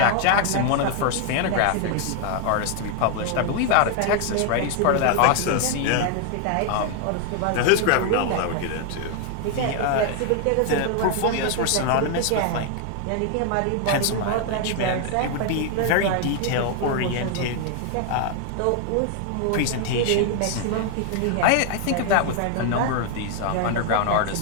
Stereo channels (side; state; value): both; different; correlation 0.00